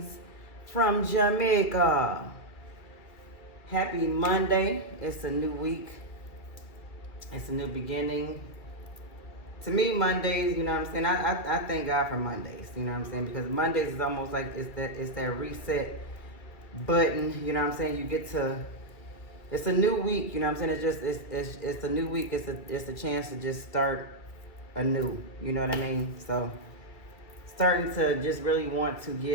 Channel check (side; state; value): right; late; 2.3 ms